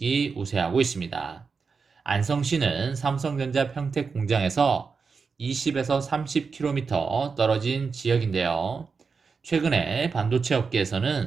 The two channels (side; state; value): left; quieter; 5.1 dB